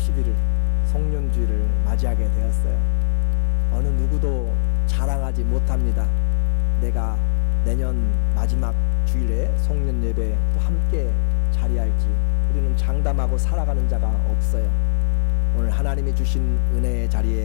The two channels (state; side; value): silent; right; digital silence